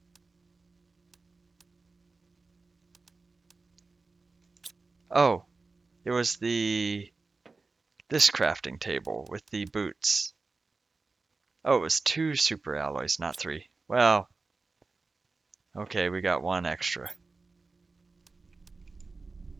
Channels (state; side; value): quieter; left; 3.9 dB